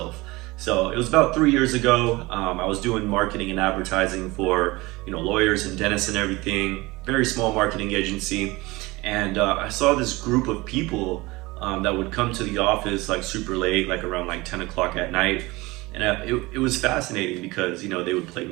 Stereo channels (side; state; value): left; quieter; 22.0 dB